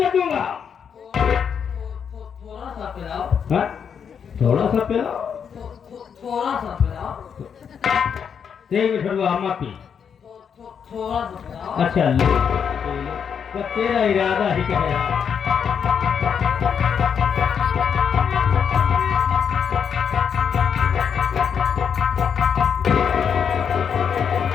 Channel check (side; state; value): right; quieter; 7.3 dB